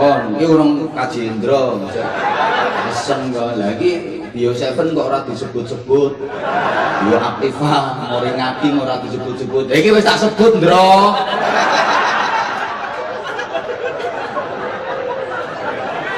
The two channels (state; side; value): identical; both; correlation 1.00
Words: ini orang kaji Indra, pesen kok lagi. Bio 7 kok ora disebut-sebut, Bio Aktiva, Mori Ngati ora disebut-sebut. Iki wis tak sebut, Ndra.